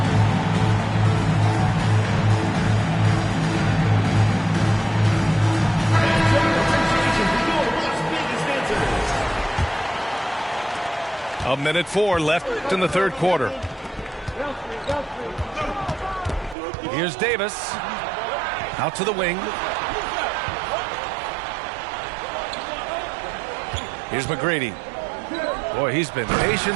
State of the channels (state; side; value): drops out; left; at 16.6 s